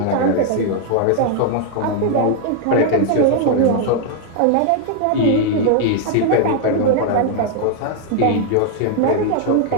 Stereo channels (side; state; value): both; different; correlation 0.00